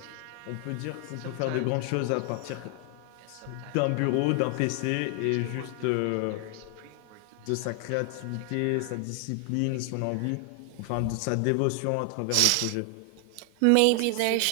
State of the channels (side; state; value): both; different; correlation 0.00